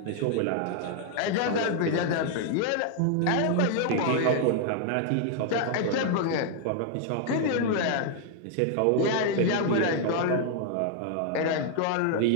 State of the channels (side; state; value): both; different; correlation 0.00